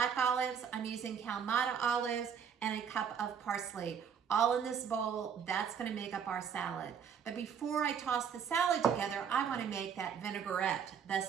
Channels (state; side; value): quieter; left; 7.5 dB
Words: olives. I'm using Kalamata olives, and a cup of parsley. All in this bowl. That's gonna make up our salad. But before I toss the salad together, I wanna make that vinaigrette, the